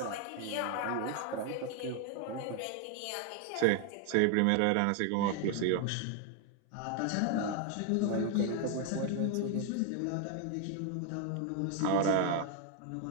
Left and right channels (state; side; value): different; both; correlation 0.01